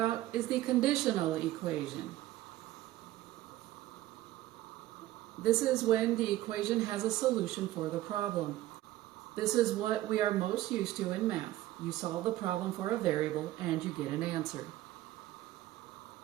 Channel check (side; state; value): left; quieter; 15.4 dB